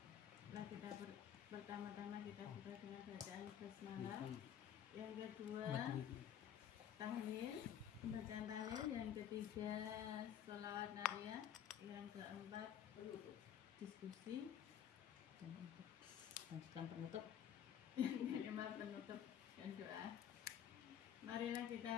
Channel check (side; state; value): right; quieter; 9.5 dB